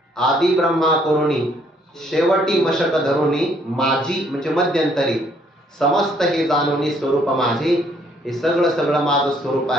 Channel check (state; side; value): normal; both; correlation 0.66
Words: आदी ब्रह्मा करुणी शेवटी मशक धरुणी माझी म्हणजे मध्यंतरी समस्त हे जाणुनी स्वरूप माझे. हे सगळं सगळं माझं स्वरूप